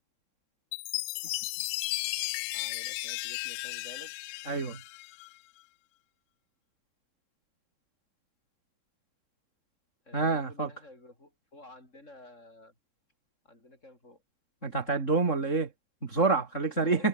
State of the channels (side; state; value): right; late; 3.7 ms